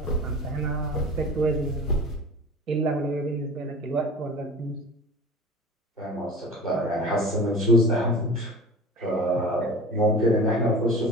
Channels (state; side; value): normal; both; correlation 0.37